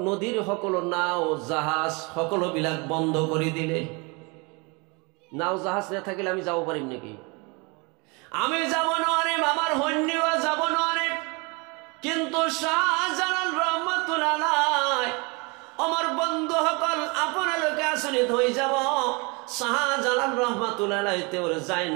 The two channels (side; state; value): left; quieter; 29.3 dB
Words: নদীৰ সকলো নাও জাহাজ সকলোবিলাক বন্ধ কৰি দিলে। নাও জাহাজ নাথাকিলে আমি যাব পাৰিম নেকি? আমি যাব নোৱাৰিম, আমাৰ সৈন্যও যাব নোৱাৰিম। কিন্তু শাহজালাল রহমাতুল্লাহ আলাইহি আমার বন্ধুসকল আপোনালোকে আচৰিত হৈ যাব। শাহজালাল রহমাতুল্লাহ আলাইহি তেওঁৰ যায়